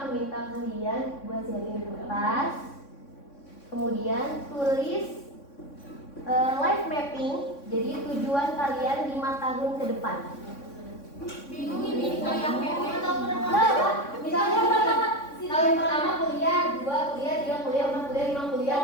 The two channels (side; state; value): right; late; 3.6 ms